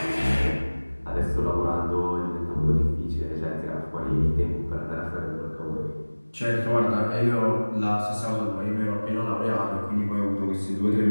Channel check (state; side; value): inverted; both; correlation -1.00